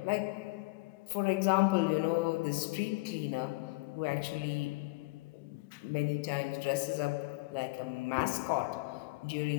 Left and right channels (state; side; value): quieter; right; 24.8 dB